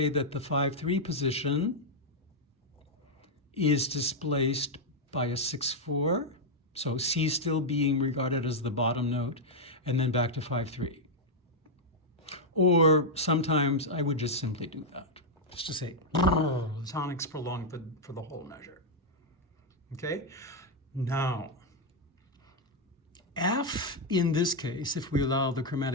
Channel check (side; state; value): both; normal; correlation -0.02